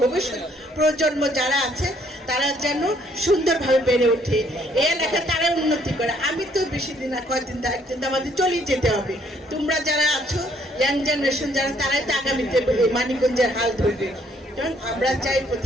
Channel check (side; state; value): both; normal; correlation 0.66